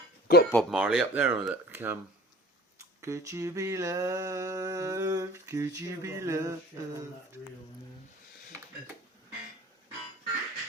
Got Bob Marley up there on that. Could you be loved? Could you be loved?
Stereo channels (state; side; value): normal; both; correlation 0.46